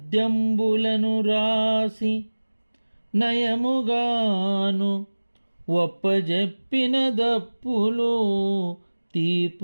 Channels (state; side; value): inverted; both; correlation -1.00